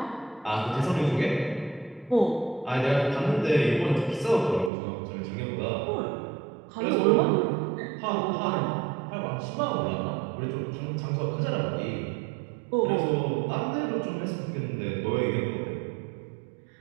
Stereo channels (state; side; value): drops out; left; at 4.7 s